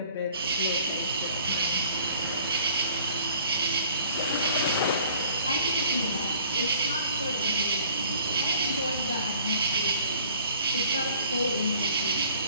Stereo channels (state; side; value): inverted; both; correlation -0.55